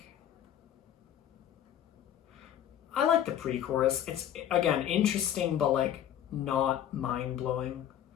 I like the pre-chorus. It's again interesting, but like not mind-blowing.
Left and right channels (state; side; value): quieter; right; 10.6 dB